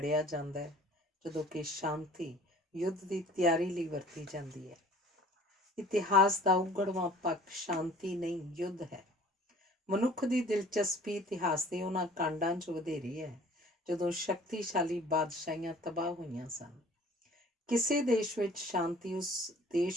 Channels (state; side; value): normal; both; correlation 0.50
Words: ਜਾਂਦਾ ਹੈ, ਜਦੋਂ ਕਿ ਸ਼ਾਂਤੀ ਯੁੱਧ ਦੀ ਤਿਆਰੀ ਲਈ ਵਰਤੀ ਜਾਂਦੀ ਹੈ। ਇਤਿਹਾਸ ਦਾ ਉਗੜਵਾਂ ਪੱਖ ਸ਼ਾਂਤੀ ਨਹੀਂ, ਯੁੱਧ ਹੈ। ਮਨੁੱਖ ਦੀ ਦਿਲਚਸਪੀ ਇਤਿਹਾਸ ਦੇ ਉਹਨਾਂ ਕਾਂਡਾਂ 'ਚ ਵਧੇਰੀ ਹੈ ਜਦੋਂ ਸ਼ਕਤੀਸ਼ਾਲੀ ਬਾਦਸ਼ਾਹੀਆਂ ਤਬਾਹ ਹੋਈਆਂ ਸਨ। ਕਿਸੇ ਦੇਸ਼ ਵਿੱਚ ਸ਼ਾਂਤੀ ਉਸ